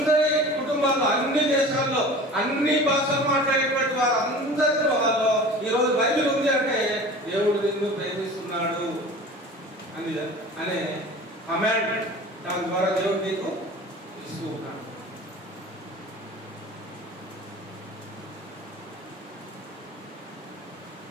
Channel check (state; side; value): normal; both; correlation 0.40